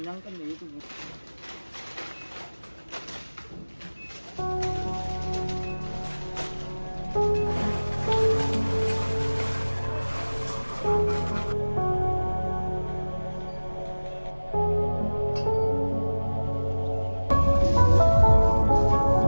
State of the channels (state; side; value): inverted; both; correlation -1.00